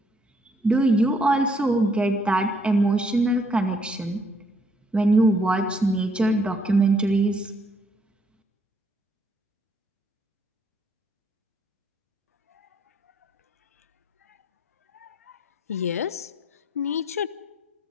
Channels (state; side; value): normal; both; correlation 0.69